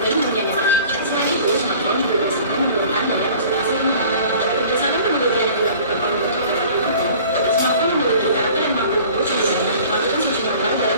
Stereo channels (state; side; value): inverted; both; correlation -0.47